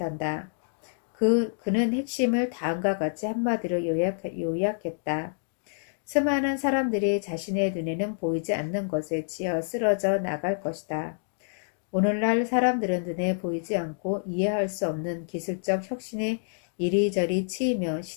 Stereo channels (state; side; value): silent; right; digital silence